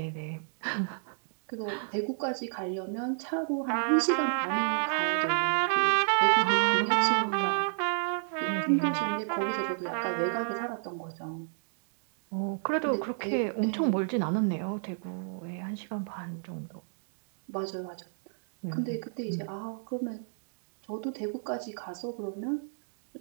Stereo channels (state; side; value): silent; left; digital silence